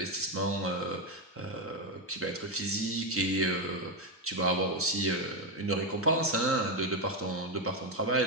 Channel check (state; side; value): normal; both; correlation 0.07